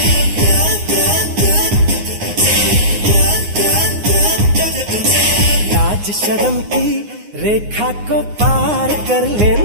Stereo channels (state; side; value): late; left; 9.7 ms